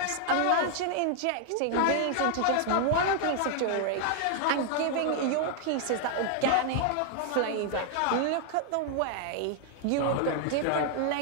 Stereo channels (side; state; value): both; different; correlation 0.00